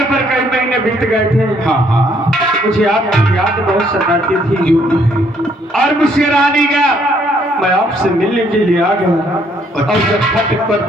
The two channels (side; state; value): both; normal; correlation 0.67